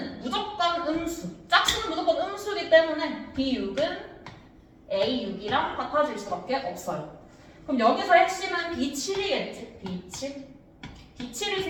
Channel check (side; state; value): both; identical; correlation 1.00